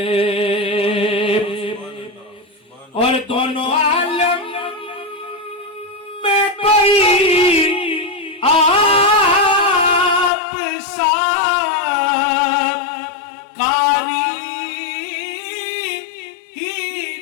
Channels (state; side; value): drops out; right; at 10.3 s